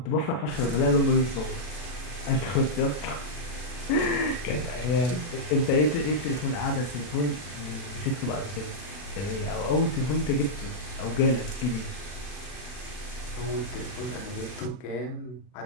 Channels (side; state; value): right; late; 40 ms